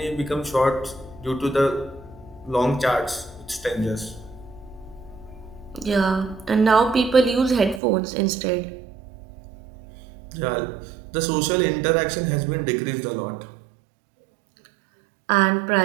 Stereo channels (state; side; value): drops out; left; at 7.8 s